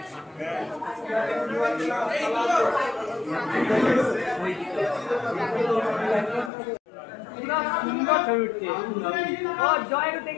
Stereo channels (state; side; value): drops out; right; at 6.5 s